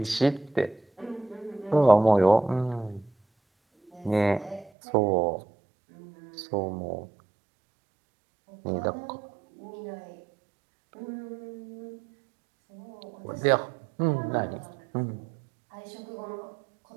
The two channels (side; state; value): left; drops out; at 4.7 s